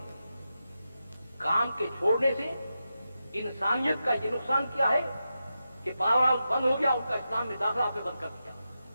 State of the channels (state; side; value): inverted; both; correlation -0.89